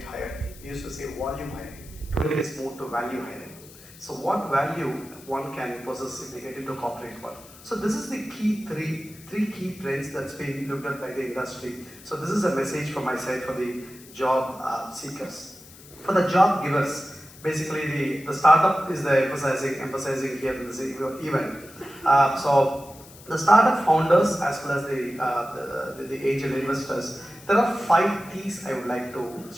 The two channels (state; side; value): noise; left; hiss, 20 dB below the sound